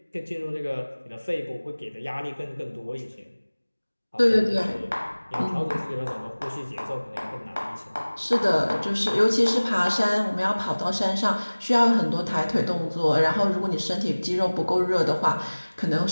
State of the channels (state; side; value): inverted; both; correlation -1.00